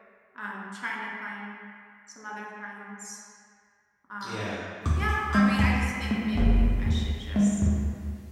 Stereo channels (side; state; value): both; identical; correlation 1.00